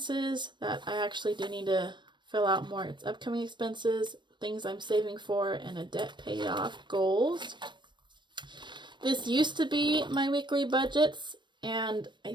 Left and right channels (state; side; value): late; left; 0.22 ms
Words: that I actually do need to fill out more. It's upcoming expenses, things I'm saving for, and a debt paid off goals. This used to be my weekly budgets, and